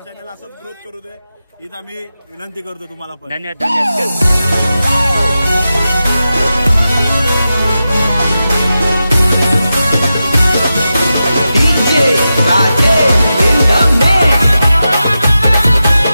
असंच ग्रोथ करू दे हीच आम्ही विनंती करतो तुम्हाला पण. धन्यवाद धन्यवाद.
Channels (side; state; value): both; inverted; correlation -0.91